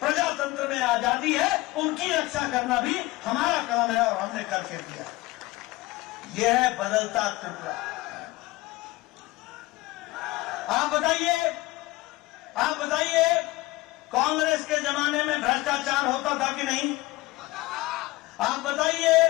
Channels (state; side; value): quieter; right; 19.7 dB